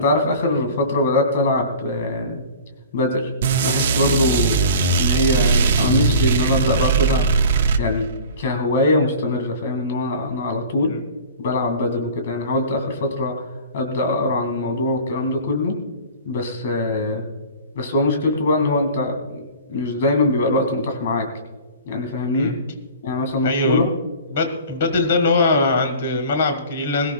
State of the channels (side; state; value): both; inverted; correlation -0.42